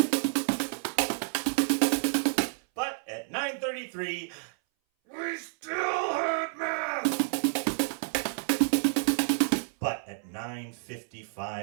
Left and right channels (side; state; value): left; silent; 58 dB below the other